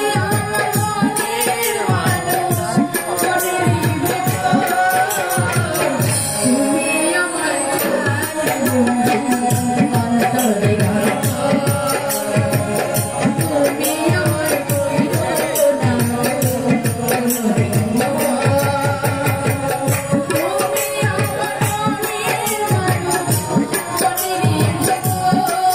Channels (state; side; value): noise; left; rumble, 29 dB below the sound